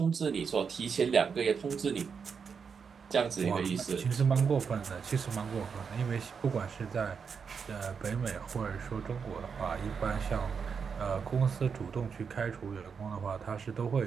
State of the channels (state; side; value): quieter; left; 6.1 dB